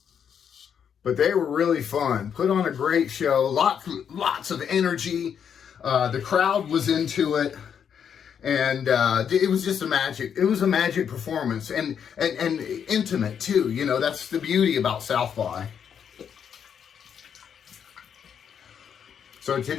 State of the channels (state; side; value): quieter; right; 7.9 dB